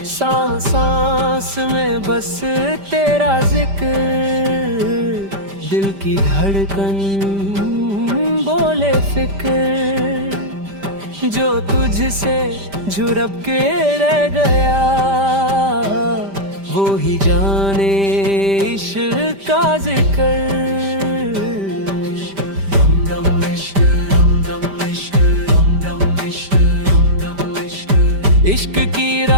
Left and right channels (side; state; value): left; late; 5.1 ms